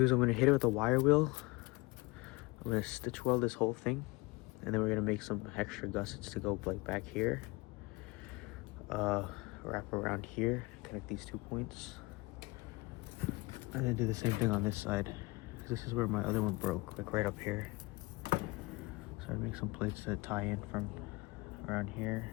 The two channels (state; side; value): quieter; right; 24.3 dB